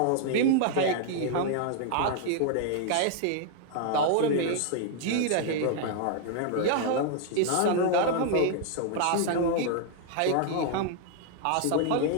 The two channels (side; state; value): both; different; correlation 0.00